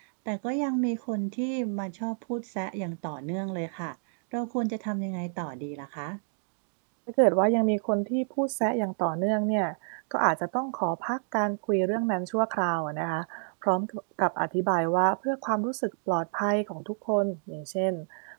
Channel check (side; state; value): left; silent; digital silence